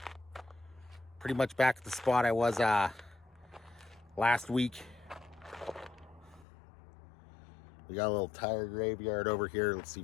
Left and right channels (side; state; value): right; drops out; at 6.5 s